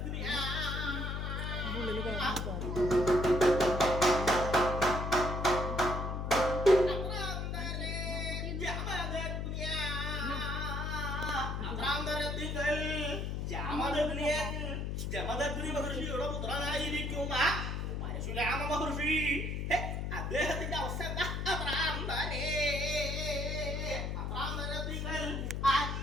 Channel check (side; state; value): left; noise; hum, 2 dB below the sound